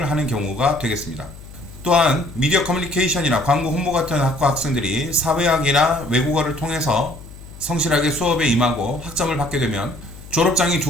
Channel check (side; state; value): left; noise; hum, 17 dB below the sound